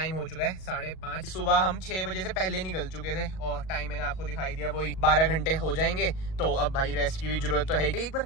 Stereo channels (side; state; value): right; late; 38 ms